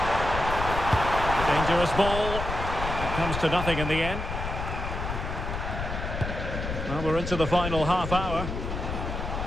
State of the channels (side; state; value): left; noise; rumble, 5 dB below the sound